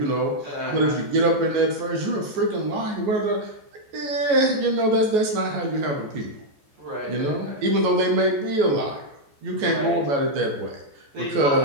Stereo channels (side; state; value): left; late; 14 ms